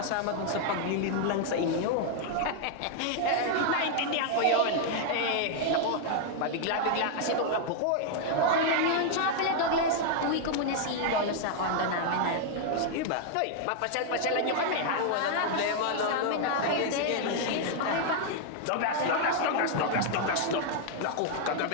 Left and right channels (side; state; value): both; different; correlation 0.00